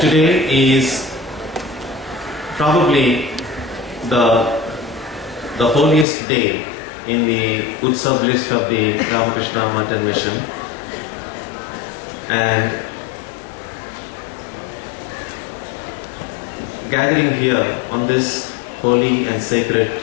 Today is probably the holiest day in the Utsav list of the Ramakrishna Mountain Mission, and gathering here on this holy and sacred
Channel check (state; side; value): drops out; right; at 6.1 s